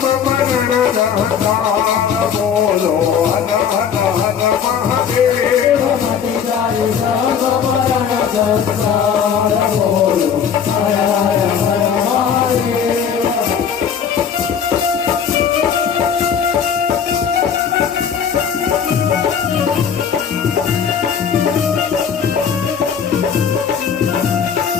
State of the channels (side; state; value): right; quieter; 7.4 dB